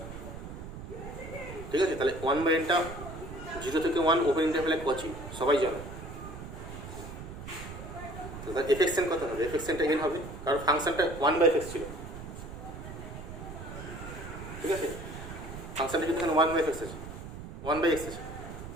ঠিক আছে, তাহলে 1/nটা 0 থেকে 1 ওপেন ইন্টারভ্যালে কচি, সবাই জানো। তাহলে এফএক্সএন কত হবে, এফএক্সএনটা n হবে, কারণ ফাংশনটা 1/x ছিল। ঠিক আছে, ফাংশনটা কিন্তু এখানে 1/x আছে, 1/x আছে,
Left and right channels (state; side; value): noise; right; rumble, 10 dB below the sound